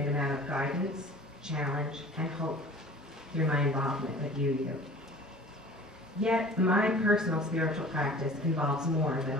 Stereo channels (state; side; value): normal; both; correlation 0.44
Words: amount of guidance, challenge, and hope through my involvement with UU. Yet, my personal spiritual practice involves more than